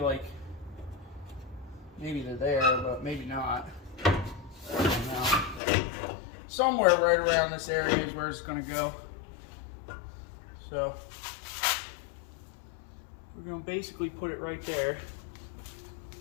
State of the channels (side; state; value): right; drops out; at 5.6 s